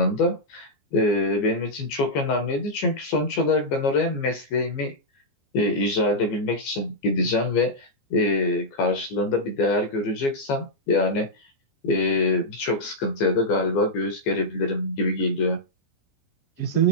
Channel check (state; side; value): late; right; 14 ms